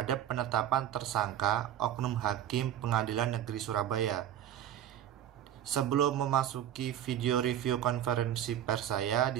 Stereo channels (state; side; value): quieter; left; 11.0 dB